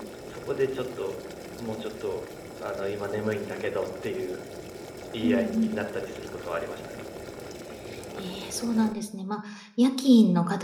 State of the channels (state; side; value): identical; both; correlation 1.00